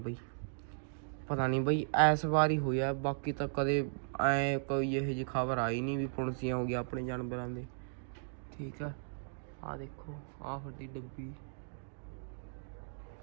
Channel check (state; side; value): silent; left; digital silence